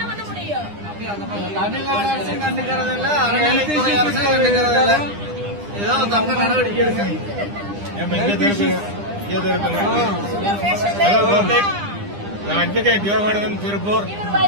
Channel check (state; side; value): late; left; 9.9 ms